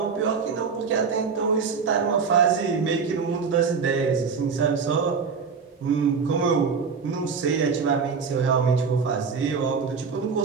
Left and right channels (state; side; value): quieter; left; 5.5 dB